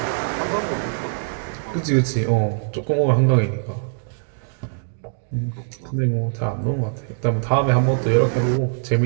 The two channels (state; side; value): silent; left; digital silence